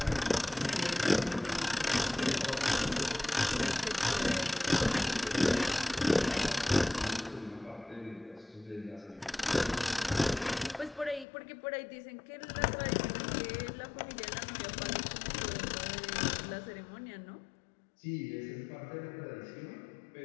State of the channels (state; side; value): drops out; right; at 11.2 s